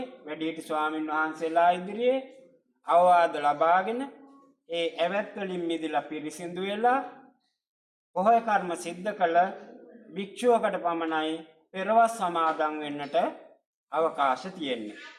වැඩිහිටි ස්වාමින් වහන්සේලා ඉදිරියේ අවවාද ලබාගෙන ඒ ඇවැත් වලින් මිදලා පිරිසිදු වෙලා පොහොය කර්ම සිද්ධ කළ භික්ෂුවකට පමණයි පෙරවස් සමාදන් වෙන්නට අවකාශ තියෙන්නේ.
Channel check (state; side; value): identical; both; correlation 1.00